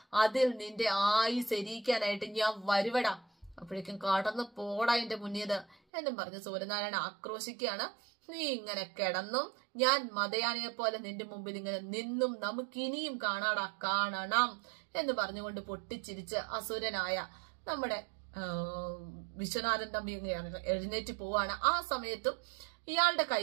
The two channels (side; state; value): left; drops out; at 5.8 s